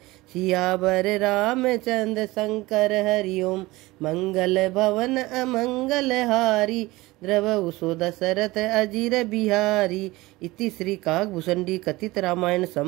सियावर रामचंद्र शंकर हरिओम मंगल भवन अमंगल हारी द्रवहु सो दशरथ अजीर बिहारी। इति श्री काकभूषणी कथित रामायण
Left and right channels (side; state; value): left; quieter; 20.2 dB